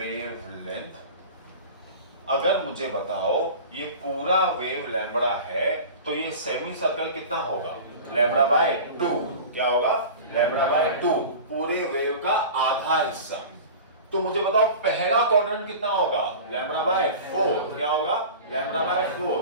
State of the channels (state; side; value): inverted; both; correlation -0.36